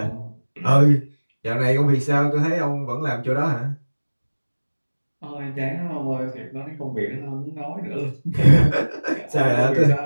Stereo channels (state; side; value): inverted; both; correlation -1.00